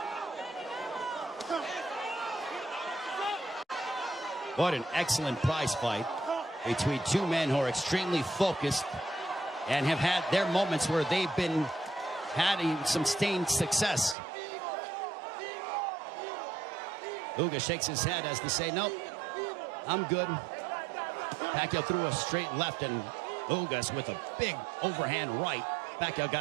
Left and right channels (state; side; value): drops out; left; at 14.2 s